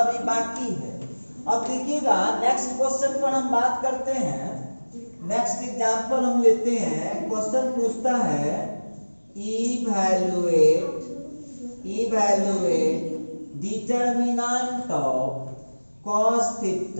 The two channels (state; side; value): inverted; both; correlation -1.00